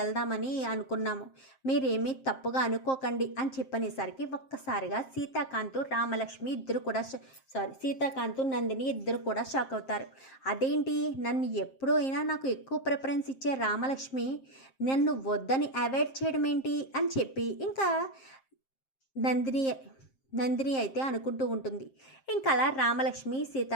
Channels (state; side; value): late; right; 7.5 ms